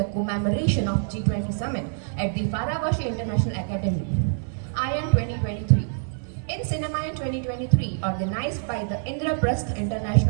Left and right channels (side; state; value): left; silent; digital silence